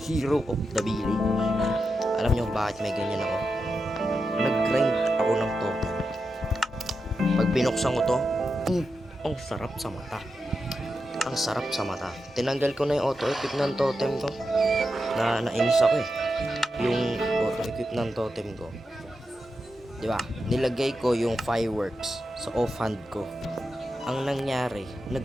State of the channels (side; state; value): both; normal; correlation 0.88